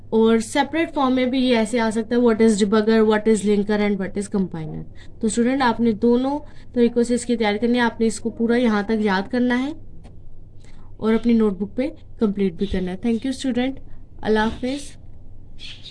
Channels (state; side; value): identical; both; correlation 1.00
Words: और सेपरेट फॉर्म में भी ये ऐसे आ सकता है, what is debugger, what is linker and what is compiler. तो स्टूडेंट आपने दोनों तरीकों से इसकी तैयारी करनी है, आपने इसको पूरा यहाँ तक याद करना है और अपनी नोटबुक पे कंप्लीट भी करना है। थैंक यू स्टूडेंट, अल्लाह हाफिज़।